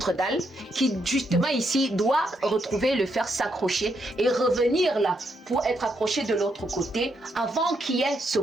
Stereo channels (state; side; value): normal; both; correlation 0.78